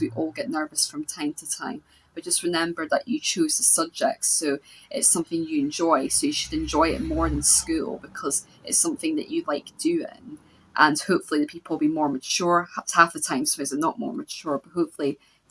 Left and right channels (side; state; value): both; identical; correlation 1.00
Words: We all get nervous from time to time, but just remember that you chose the subject, so it's something you enjoy, so you should enjoy it more than school because it's something that you like doing. And hopefully the people will be more mature. Half the time sometimes they're not more mature, but hopefully